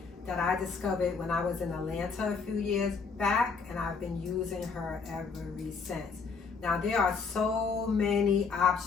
that I discovered when I was in Atlanta a few years back, and I've been using her ever since. Now, there are so many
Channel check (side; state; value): right; quieter; 5.1 dB